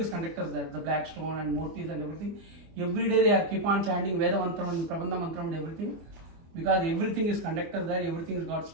conductors there, the black stone and murtis and everything. Every day they are keep on chanting Veda Mantram and Prabandha Mantram and everything. Because everything is conductors there, everything is got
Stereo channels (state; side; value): late; left; 24 ms